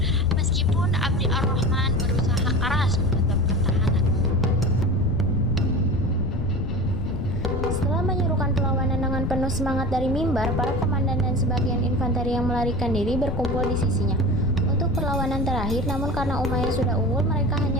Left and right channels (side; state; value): left; noise; rumble, 3 dB below the sound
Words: meskipun Abdi ar-Rahman berusaha keras menetap pertahanan. Setelah menyerukan perlawanan dengan penuh semangat dari mimbar, para komandan dan sebagian infanteri yang melarikan diri berkumpul di sisinya untuk perlawanan terakhir. Namun karena Umayyah sudah unggul, mereka